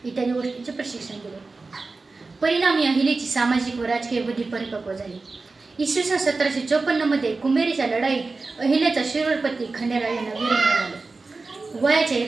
इत्यादी गोष्टींचे प्रशिक्षण दिले। परिणामी अहिलेची सामाजिक व राजकीय बुद्धी परिपक्व झाली। इसवी सन 1754 मध्ये कुंभेरीच्या लढाईत अहिल्याचा शिरोळपती खंडेराव यांना वीर मिळाले। वयाच्या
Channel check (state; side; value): quieter; left; 3.8 dB